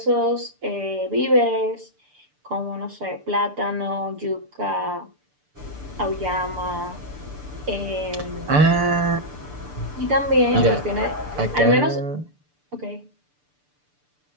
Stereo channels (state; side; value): late; left; 6.8 ms